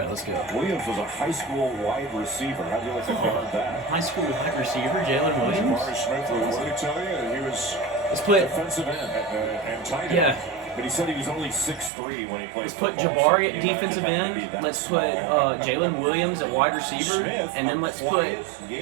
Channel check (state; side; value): drops out; left; at 11.9 s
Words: let's go. Williams was a high school wide receiver. How'd you like to guard that? High school wide receiver, Jalen Williams? Jabari Smith, what did he tell you? He was defensive end and tight end. Yeah. But he said he was only 6'3" when he played. Let's put football, Jabari so at defensive end. Let's put Jalen Williams at wide receiver. Smith, and then let's put